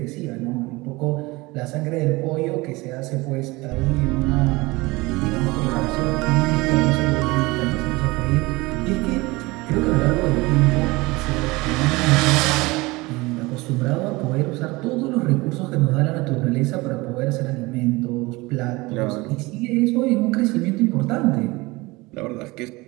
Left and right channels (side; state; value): left; quieter; 22.6 dB